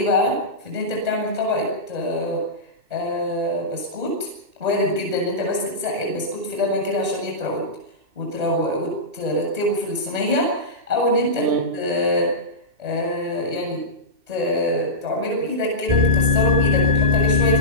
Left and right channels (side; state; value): left; late; 2.6 ms